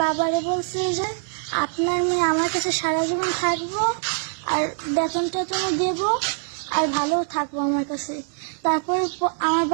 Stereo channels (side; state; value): left; silent; digital silence